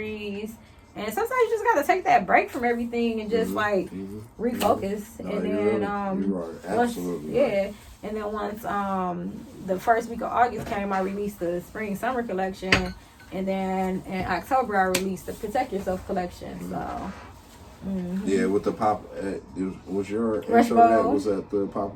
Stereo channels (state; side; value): identical; both; correlation 1.00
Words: And sometimes you just gotta take that break from everything and just refocus. No, And you're then absolutely once, right. and then once the first week of August came, I released the spring summer collection, and then in October I released the Protect Yourself collection. So Yeah, with the pop, was your Rush intro that Bowl. was at the